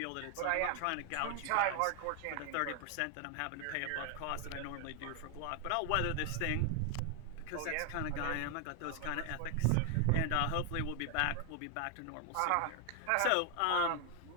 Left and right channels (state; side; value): different; both; correlation 0.00